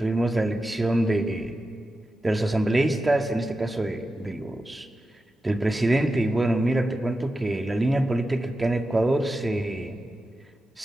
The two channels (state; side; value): normal; both; correlation 0.92